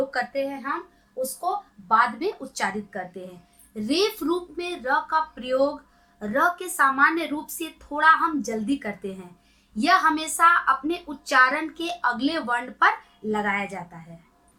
करते हैं हम उसको बाद में उच्चारित करते हैं। रेफ रूप में र का प्रयोग र के सामान्य रूप से थोड़ा हम जल्दी करते हैं। यह हमेशा अपने उच्चारण के अगले वर्ण पर लगाया जाता है।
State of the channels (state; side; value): identical; both; correlation 1.00